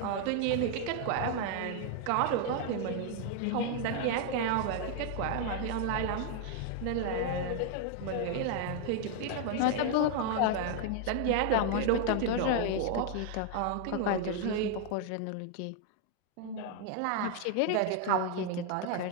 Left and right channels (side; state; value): both; different; correlation 0.00